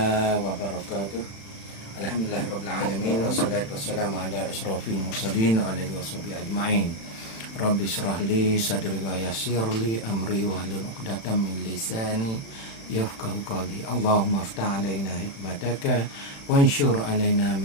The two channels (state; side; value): late; right; 36 ms